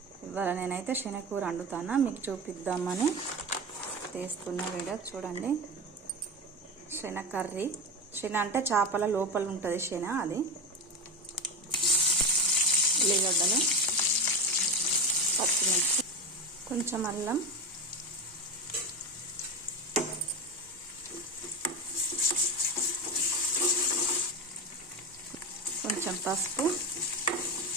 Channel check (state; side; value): normal; both; correlation 0.21